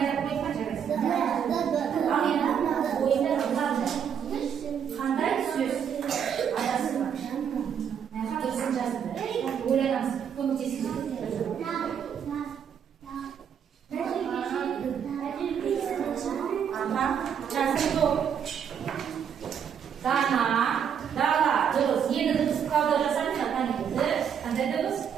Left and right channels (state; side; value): quieter; left; 8.0 dB